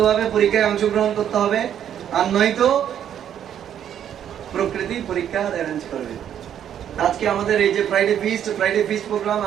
ভাবে পরীক্ষায় অংশগ্রহণ করতে হবে, আর নয়তো প্রকৃতি পরীক্ষা অ্যারেঞ্জ করবে। আজকে আমাদের এই যে ফ্রাইডে ফিস্ট প্রোগ্রাম,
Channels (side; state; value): left; quieter; 9.7 dB